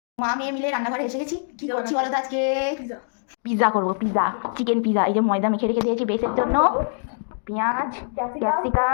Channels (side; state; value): right; silent; 63 dB below the other